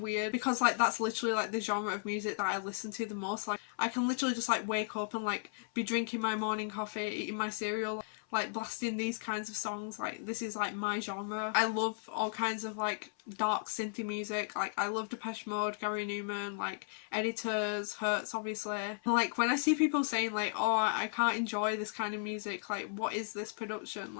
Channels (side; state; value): right; silent; 54 dB below the other